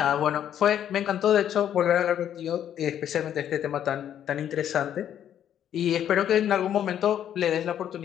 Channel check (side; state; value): right; quieter; 10.1 dB